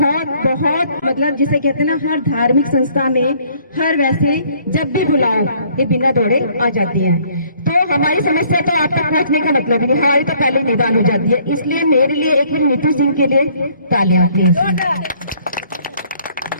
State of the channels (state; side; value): inverted; both; correlation -0.61